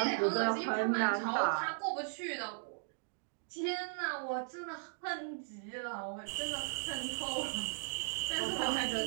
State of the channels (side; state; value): left; silent; digital silence